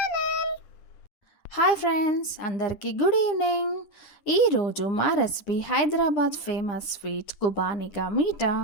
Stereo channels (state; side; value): late; right; 10 ms